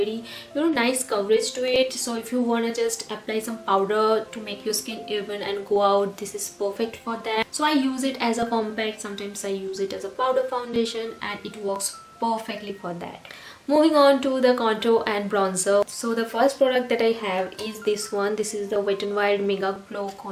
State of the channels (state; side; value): identical; both; correlation 1.00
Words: you know, nice coverage to it. So if you want to just apply some powder to make your skin even and go out, this is perfect for that. So I use it as a compact, sometimes I use it as a powder foundation, and it works perfectly for that. Moving on to the contour and bronzer. So the first product that I have is this one. This is the Wet n Wild Megaglo